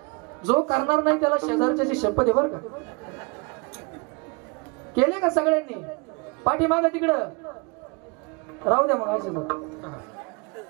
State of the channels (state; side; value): quieter; left; 30.2 dB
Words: जो करणार नाही त्याला शेजारच्याची शपथ आहे, बरं का? केले का सगळ्यांनी? पाठीमागं तिकडं राहू द्या. मग